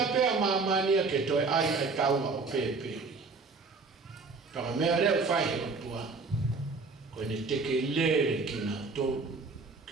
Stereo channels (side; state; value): left; quieter; 4.2 dB